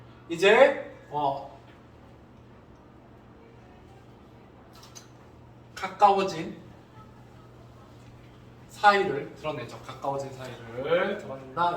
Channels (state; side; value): identical; both; correlation 1.00